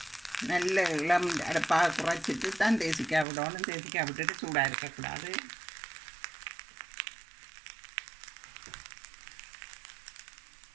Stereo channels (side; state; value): left; drops out; at 3.2 s